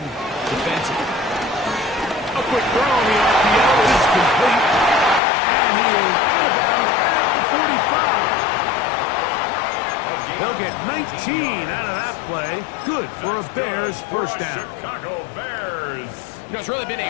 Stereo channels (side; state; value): right; drops out; at 5.2 s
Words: defensively. A quick throw on the RPO is complete, and he is out of bounds at the 45. They'll get 19 out of that play. Good for a Bears first down. Chicago Bears. You know, it's really been a